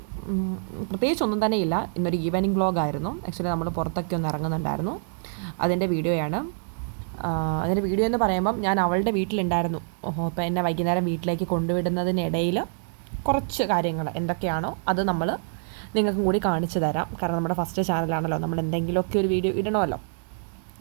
പ്രത്യേകിച്ചൊന്നും തന്നെ ഇല്ല, ഇന്നൊരു ഈവനിങ് വ്ളോഗായിരുന്നു. ആക്ച്വലി നമ്മൾ പുറത്തൊക്കെ ഒന്ന് ഇറങ്ങുന്നുണ്ടായിരുന്നു, അതിൻ്റെ വീഡിയോയാണ്. അതിൻ്റെ വീഡിയോ എന്ന് പറയുമ്പം ഞാൻ അവളുടെ വീട്ടിലുണ്ടായിരുന്നു. അപ്പോൾ എന്നെ വൈകുന്നേരം വീട്ടിലേക്ക് കൊണ്ടുവിടുന്നതിനിടയിൽ കുറച്ച് കാര്യങ്ങൾ എന്തൊക്കെയാണോ അത് നമ്മൾ നിങ്ങൾക്കും കൂടി കാണിച്ചു തരാം. കാരണം നമ്മുടെ ഫസ്റ്റ് ചാനലാണല്ലോ, നമ്മൾ എന്തെങ്കിലുമൊക്കെ ഒരു വീഡിയോ ഇടണമല്ലോ.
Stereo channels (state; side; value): silent; left; digital silence